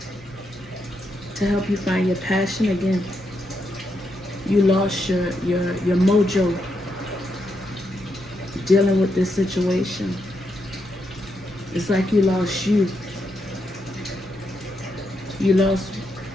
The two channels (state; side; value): normal; both; correlation 0.81